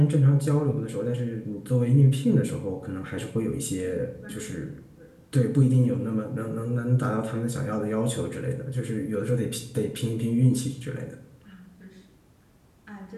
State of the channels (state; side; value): identical; both; correlation 1.00